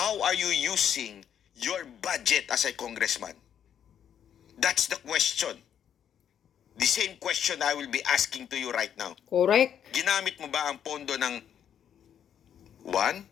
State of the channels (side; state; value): right; quieter; 9.1 dB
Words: are you using your budget as a congressman? That's the question. The same question I will be asking to you right now. Correct. Ginamit mo ba ang pondo ng